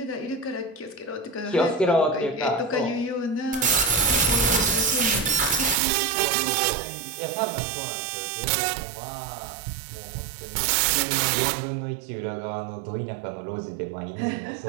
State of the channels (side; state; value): left; drops out; at 5.8 s